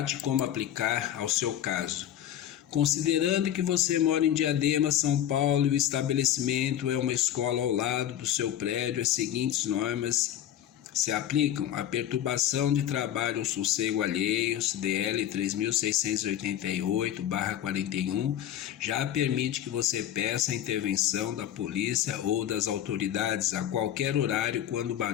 como aplicar ao seu caso. Considerando que você mora em Diadema, São Paulo, e o estabelecimento é uma escola ao lado do seu prédio, as seguintes normas se aplicam: a perturbação de trabalho ou sossego alheios, DL 3688/41, já permite que você peça a intervenção da polícia ou das autoridades a qualquer horário quando o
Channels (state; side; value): quieter; right; 11.2 dB